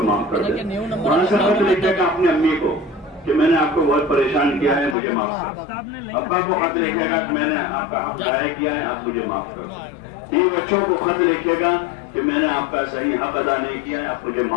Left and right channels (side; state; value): right; drops out; at 5.0 s